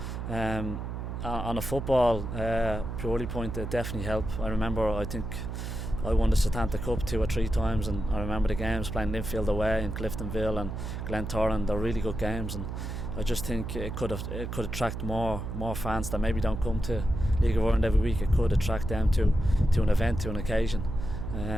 on a football purely point, it definitely help. I remember, I think I won the Setanta Cup 2 or 3 times, and I remember the games playing Linfield away and Cliftonville and Glentoran. They're really good games, and I just think it could attract more fans that maybe don't come to League of Ireland every week. It could attract them to an event, to an occasion,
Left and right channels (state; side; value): noise; right; hum, 5 dB below the sound